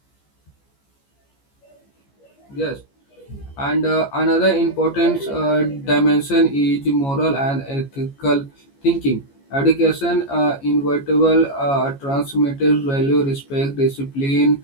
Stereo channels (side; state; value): right; late; 14 ms